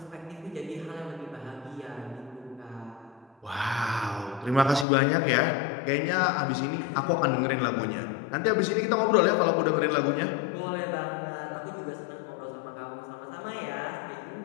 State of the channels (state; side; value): drops out; right; at 4.9 s